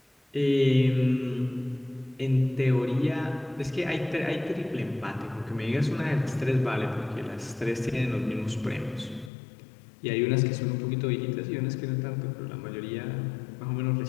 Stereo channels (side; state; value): right; drops out; at 9.3 s